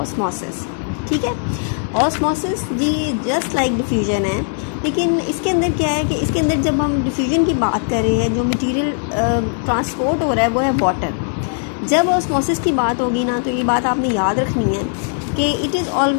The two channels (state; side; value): silent; right; 63 dB below the other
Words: ठीक है, ऑस्मोसिस जी जस्ट लाइक डिफ्यूजन है, लेकिन इसके अंदर क्या है कि इसके अंदर जब हम डिफ्यूजन की बात कर रहे हैं, जो मटेरियल ट्रांसपोर्ट हो रहा है वो है वाटर. जब ऑस्मोसिस की बात होगी ना, तो ये बात आपने याद रखनी है कि it is